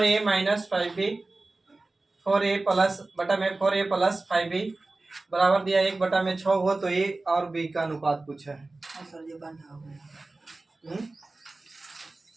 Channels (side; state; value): left; quieter; 3.2 dB